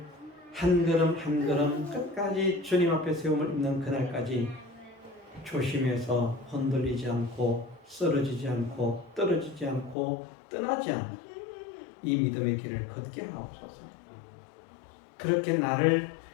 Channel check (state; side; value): drops out; right; at 10.0 s